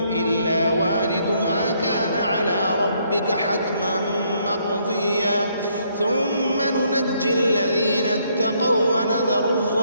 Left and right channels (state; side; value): inverted; both; correlation -0.70